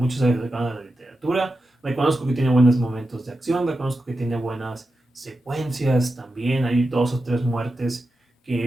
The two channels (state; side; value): normal; both; correlation 0.90